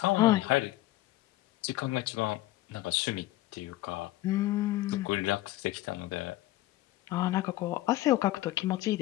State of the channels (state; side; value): quieter; right; 16.9 dB